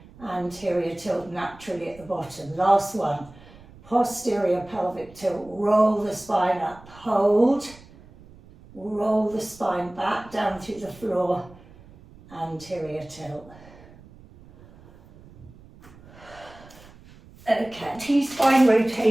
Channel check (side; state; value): right; noise; rumble, 22 dB below the sound